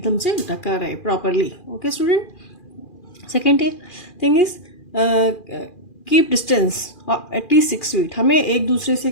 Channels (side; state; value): right; late; 2.4 ms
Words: से ढका रहे properly. Okay student. Second thing is keep distance at least 6 feet. हमें एक दूसरे से